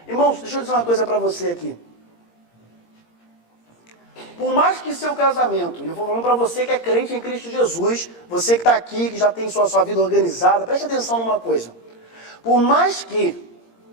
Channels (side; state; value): right; late; 17 ms